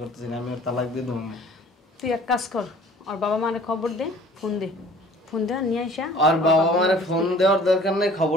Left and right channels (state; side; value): normal; both; correlation 0.50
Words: করতে চাই না, আমি ওর তালাক দিয়ে দেবো। তুই এক কাজ কর, ওর বাবা মারে খবর দে, ফোন দে, ফোন দে নিয়ে আইসা। আর বাবা মারে ফোন দেওয়ার দরকার নেই,